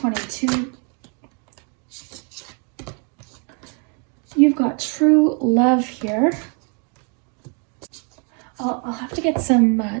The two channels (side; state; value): left; quieter; 36.7 dB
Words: You've got true love here. I'll have to get some